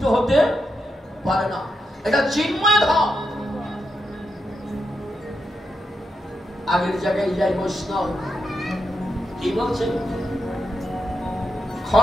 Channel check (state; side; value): normal; both; correlation 0.84